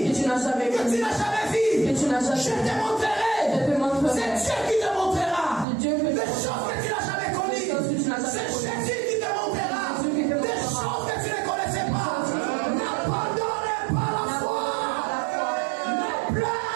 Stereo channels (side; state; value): left; drops out; at 5.7 s